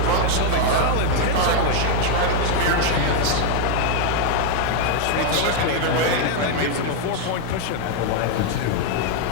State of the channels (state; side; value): different; both; correlation 0.01